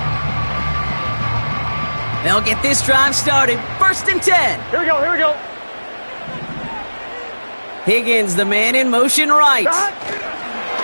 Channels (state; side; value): inverted; both; correlation -1.00